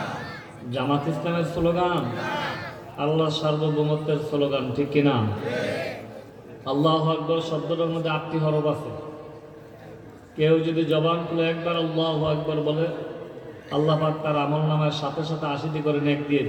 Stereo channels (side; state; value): both; identical; correlation 1.00